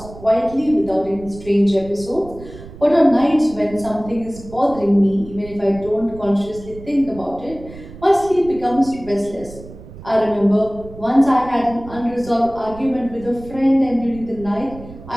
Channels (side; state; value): right; noise; rumble, 16 dB below the sound